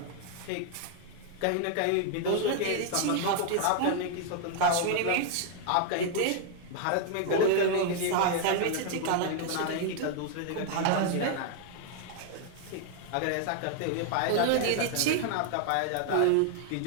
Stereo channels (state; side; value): different; both; correlation 0.00